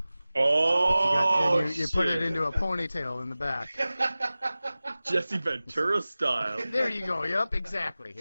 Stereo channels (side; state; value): both; inverted; correlation -0.97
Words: Oh, You put it shit. into a ponytail in the back. Jesse Ventura style. There you go. Yep, exactly.